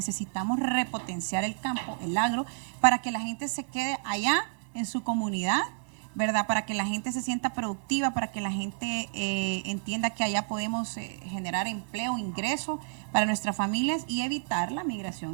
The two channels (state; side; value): silent; left; 58 dB below the other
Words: repotenciar el campo, el agro, para que la gente se quede allá en su comunidad, ¿verdad? Para que la gente se sienta productiva, para que la gente entienda que allá podemos generar empleo, ingreso para nuestras familias y evitar la